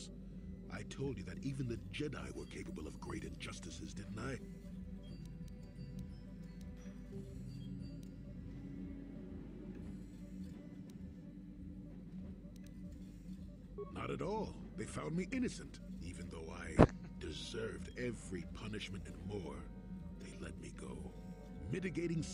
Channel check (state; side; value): identical; both; correlation 1.00